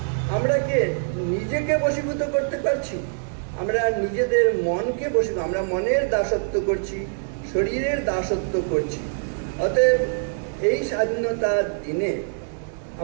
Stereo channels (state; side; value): silent; left; digital silence